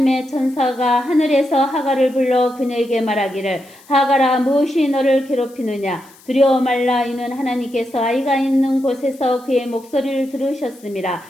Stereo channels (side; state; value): left; noise; hiss, 26 dB below the sound